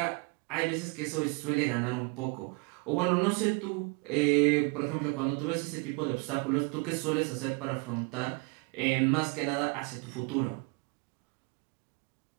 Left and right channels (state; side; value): quieter; left; 29.6 dB